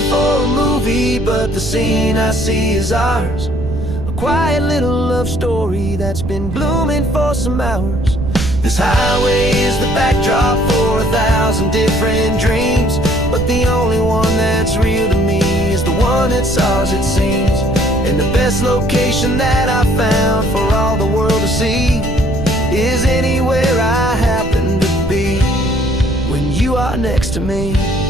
But the scene I see is ours. A quiet little love story that's been blooming for some hours. This highway is the backdrop for 1,000 different dreams, but the only one that's real to me is the one that's ours, it seems. And the best location that I found for all the world to see is anywhere I happen to be when you are next to me.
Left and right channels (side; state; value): right; noise; rumble, 6 dB below the sound